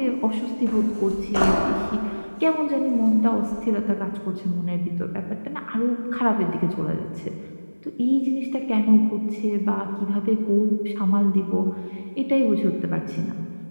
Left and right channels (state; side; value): inverted; both; correlation -1.00